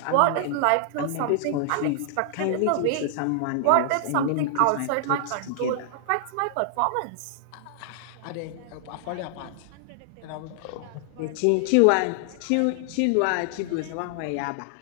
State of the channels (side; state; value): both; different; correlation 0.00